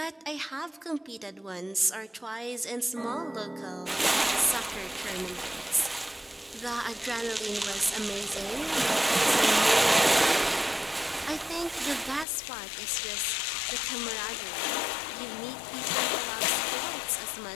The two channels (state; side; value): drops out; right; at 12.2 s